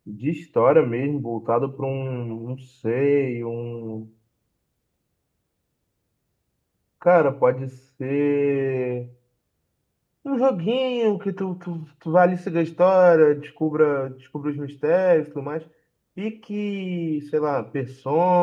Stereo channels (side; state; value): both; identical; correlation 1.00